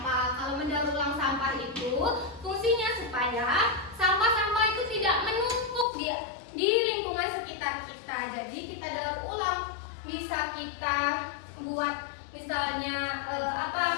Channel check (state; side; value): drops out; right; at 5.9 s